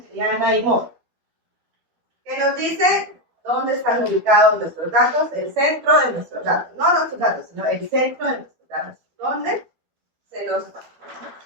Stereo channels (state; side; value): late; left; 12 ms